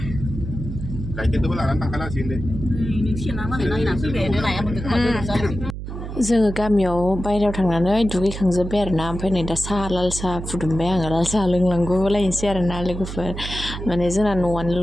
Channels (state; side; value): noise; right; hum, 8 dB below the sound